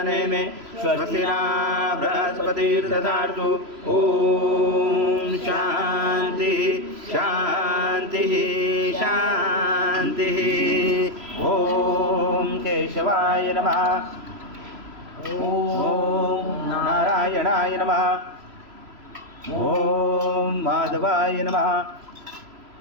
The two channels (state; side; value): late; left; 3.0 ms